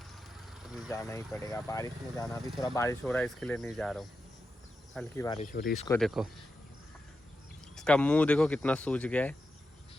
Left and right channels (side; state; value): both; normal; correlation 0.89